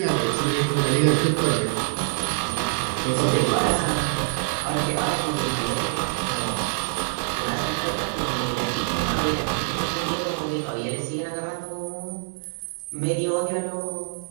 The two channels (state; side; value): silent; left; 62 dB below the other